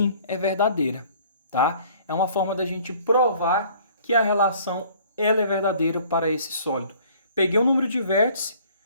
é verdadeira, tá? É uma forma da gente provar que a relação ela é verdadeira para esse sólido. Peguei o número de vértices,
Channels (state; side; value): inverted; both; correlation -0.54